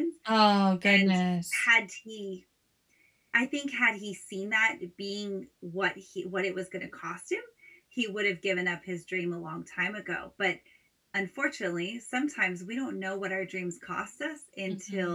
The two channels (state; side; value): identical; both; correlation 1.00